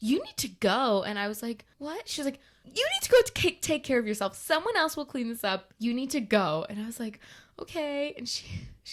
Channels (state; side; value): identical; both; correlation 1.00